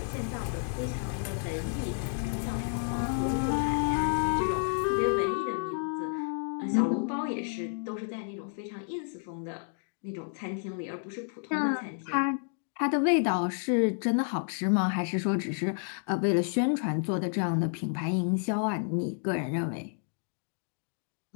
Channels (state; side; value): silent; right; 57 dB below the other